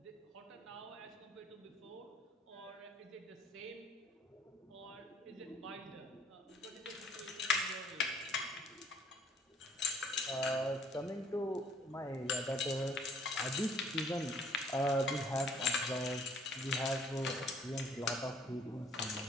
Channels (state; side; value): normal; both; correlation 0.61